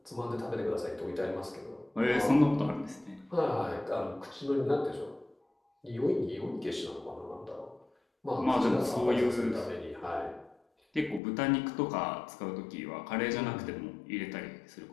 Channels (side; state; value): right; drops out; at 11.2 s